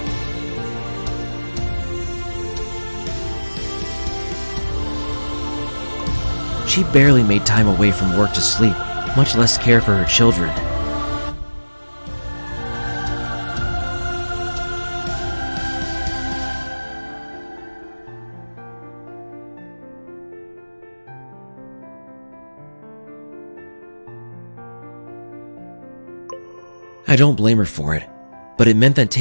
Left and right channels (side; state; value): both; inverted; correlation -1.00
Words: She barely made time away from work to sleep, much less care for her children. I don't blame her for it, but it meant that